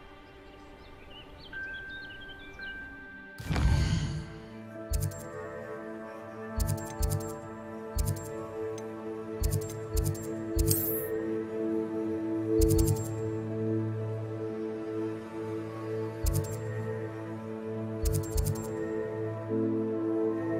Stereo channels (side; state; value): both; identical; correlation 1.00